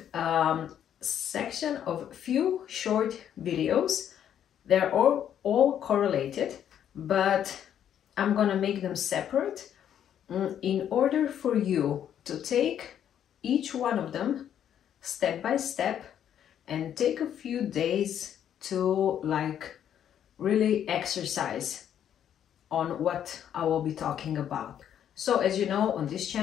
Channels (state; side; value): quieter; right; 9.7 dB